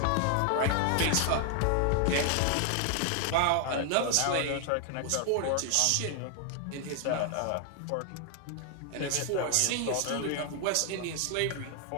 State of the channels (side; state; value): both; different; correlation 0.00